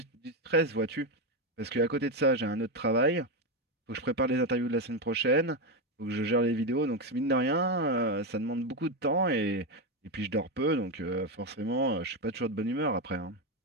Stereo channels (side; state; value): both; normal; correlation 0.10